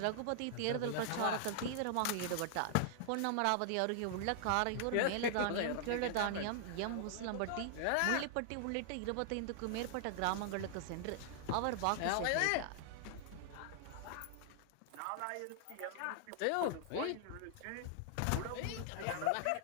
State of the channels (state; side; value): different; both; correlation -0.01